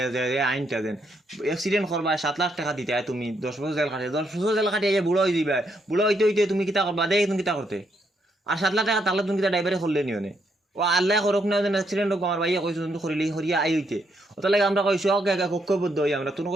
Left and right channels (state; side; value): normal; both; correlation 0.76